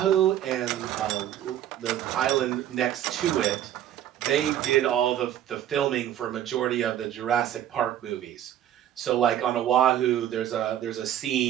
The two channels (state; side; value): quieter; left; 11.3 dB